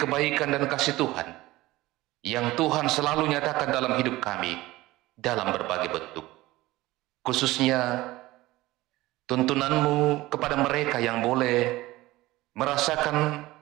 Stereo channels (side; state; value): left; quieter; 18.4 dB